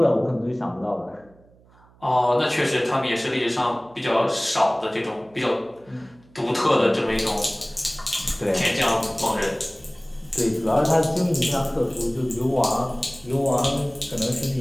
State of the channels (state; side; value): noise; right; hum, 29 dB below the sound